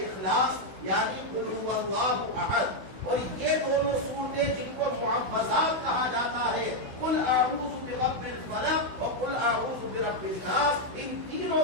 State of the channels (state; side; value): late; left; 16 ms